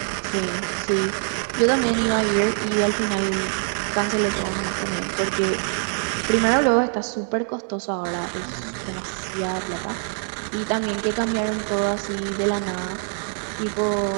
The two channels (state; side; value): silent; left; 59 dB below the other